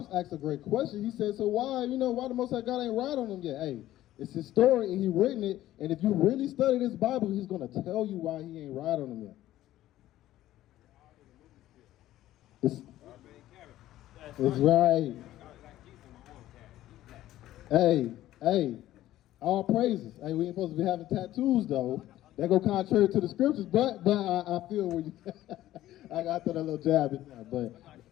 asked a great question. He said, so why the Most High God ain't write on them yet? Hey, it's his story and he written it. And if you really study this Bible, he's going to tell you why he ain't write on them yet. It's right. Hey, all praises. Hey, we ain't supposed to be having tattoos though. That go contrary to the scriptures, but I feel where you. I got that a little jab in there,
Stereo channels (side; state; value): right; quieter; 14.2 dB